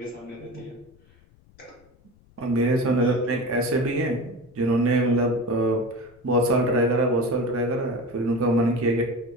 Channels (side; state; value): left; noise; rumble, 30 dB below the sound